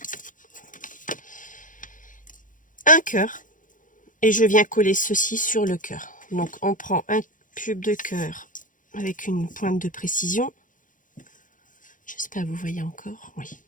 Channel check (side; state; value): right; late; 0.38 ms